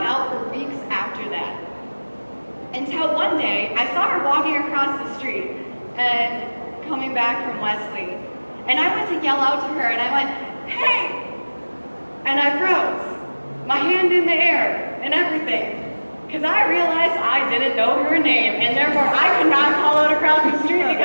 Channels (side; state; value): both; inverted; correlation -1.00